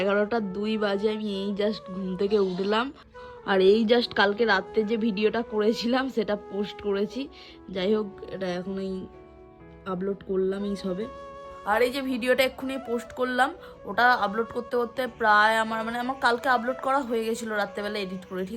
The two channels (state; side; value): identical; both; correlation 1.00